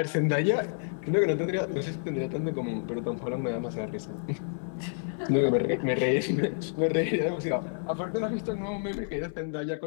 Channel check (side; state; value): right; silent; 58 dB below the other